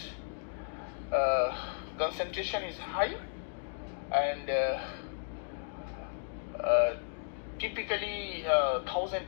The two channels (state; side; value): silent; right; digital silence